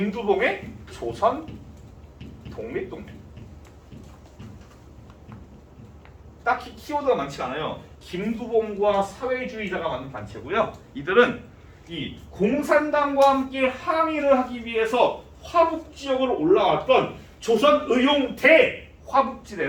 조선 독립동맹. 딱히 키워드가 많지 않아요. 김두봉과 사회주의자가 만든 단체고요. 이들은 이 공산당과 함께 항의를 하기 위해서 화북 지역으로 올라왔던 조선의용대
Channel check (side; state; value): both; identical; correlation 1.00